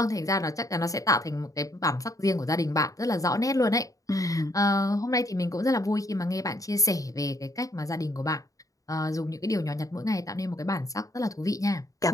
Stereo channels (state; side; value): late; right; 0.16 ms